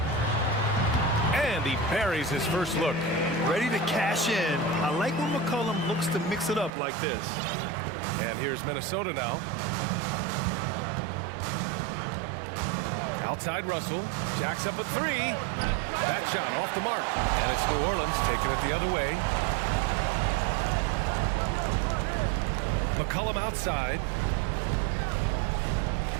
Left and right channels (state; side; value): drops out; left; at 6.7 s